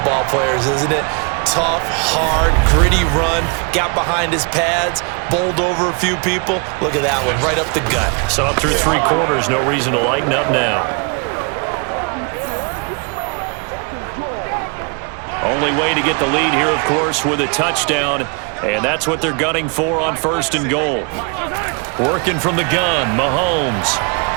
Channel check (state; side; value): quieter; left; 35.1 dB